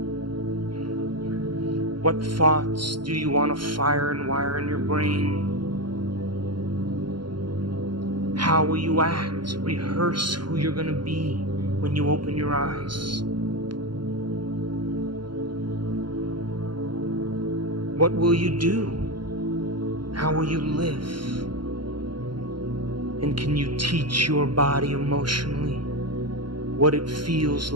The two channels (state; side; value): late; left; 0.72 ms